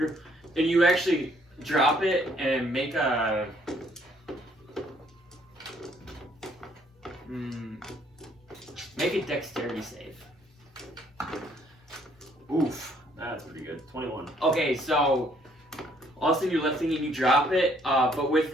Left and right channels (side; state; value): both; normal; correlation 0.65